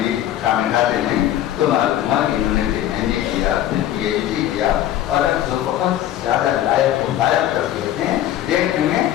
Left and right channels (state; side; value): quieter; right; 12.3 dB